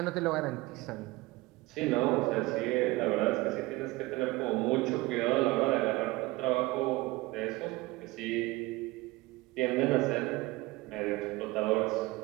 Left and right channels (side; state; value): left; quieter; 20.9 dB